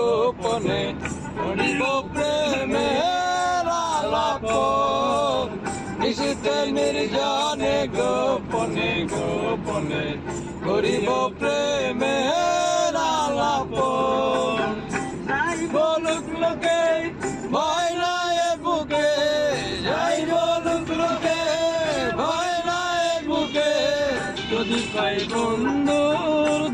করিব প্রেমের আলাপন নিশিতে নির্জনে গোপনে গোপনে করিব প্রেমের আলাপন যাই বলুক লোকে ভয় নাই বুকে যাই বলুক লোকে ভয় নাই বুকে যদি পাই বন্ধুর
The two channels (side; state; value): both; identical; correlation 1.00